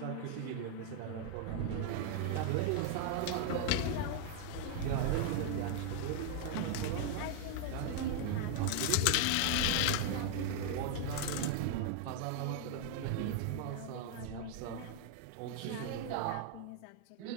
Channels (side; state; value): both; different; correlation 0.00